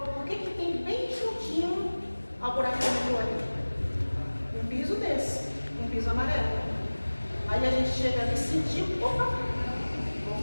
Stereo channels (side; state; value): both; inverted; correlation -1.00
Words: o que tem bem juntinho ao buraco do metrô ali? Um piso desse, um piso amarelo. Aí a gente chega ali e sentiu, opa,